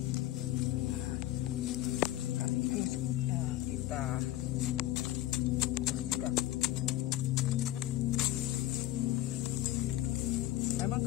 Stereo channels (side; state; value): right; quieter; 15.1 dB